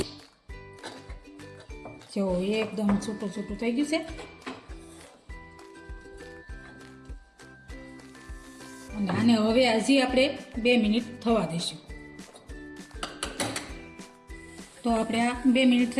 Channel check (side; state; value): both; identical; correlation 1.00